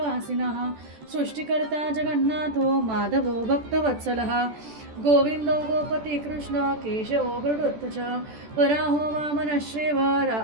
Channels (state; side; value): late; left; 14 ms